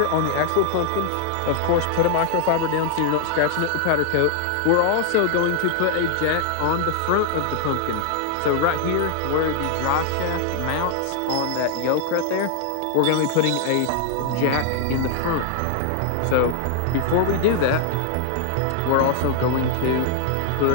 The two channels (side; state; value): both; different; correlation -0.01